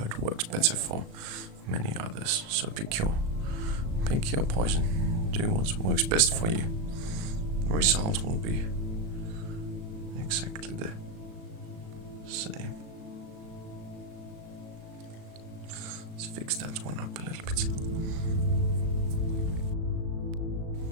works better for many others. So pick your poison. Do what works best for you. The result will be exactly the same. Let's fix that one up a little bit.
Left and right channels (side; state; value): left; late; 37 ms